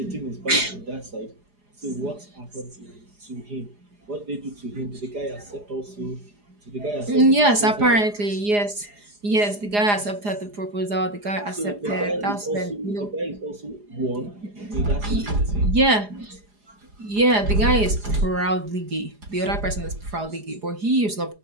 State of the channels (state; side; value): late; left; 4.8 ms